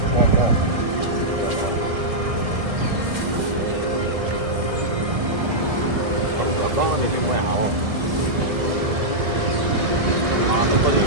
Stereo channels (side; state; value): left; late; 1.6 ms